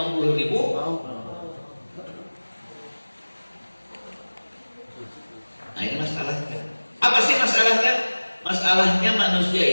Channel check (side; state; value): both; inverted; correlation -1.00